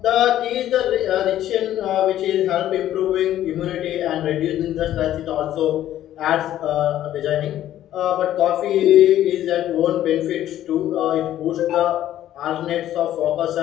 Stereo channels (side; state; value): right; quieter; 12.5 dB